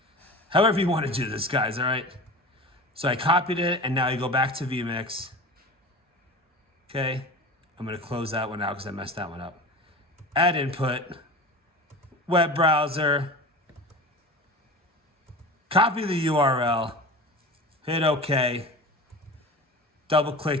However you want to do this, guys, all right? So I copied it, and now you go back to Vmix. Okay? I'm going to close that one out because I messed that one up. Add input. Web browser. Copy the URL. Hit OK. Double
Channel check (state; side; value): normal; both; correlation 0.34